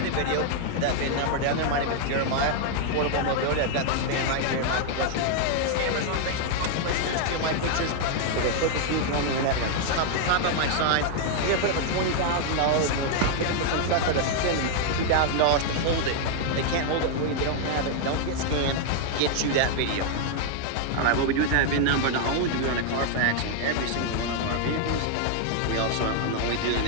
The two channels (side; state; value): both; different; correlation 0.00